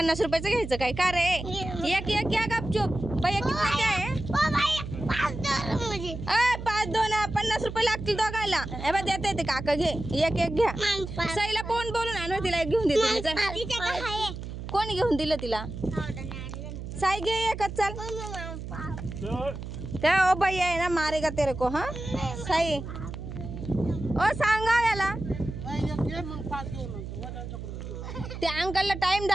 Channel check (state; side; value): noise; right; hum, 8 dB below the sound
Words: रुपयाचं घ्यायचं काय का रे? एक एक घ्या गपचूप. बाई किती काय आहे? 5 2 50 रुपये लागतील दोघायला. हे बघ देते ते काका घे. एक एक घ्या. सईला फोन बोलून आणू तिला एक घेऊन देते. कोणी घेऊन दिलं तिला? साई घे एकच चल. त्या ओ बाई आहे ना मारेगा तेरे को. हा साई ओ सांगा याला त्या अंकलला टाइम